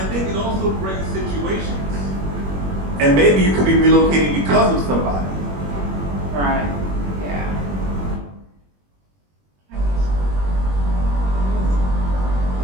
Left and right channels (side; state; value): left; late; 21 ms